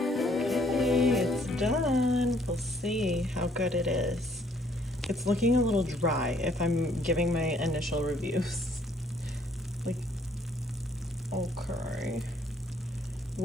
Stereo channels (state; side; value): normal; both; correlation 0.64